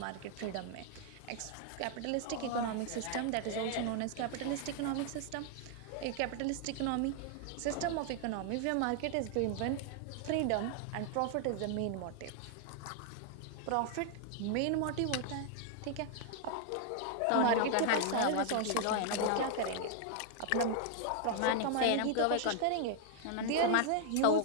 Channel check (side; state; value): both; different; correlation 0.00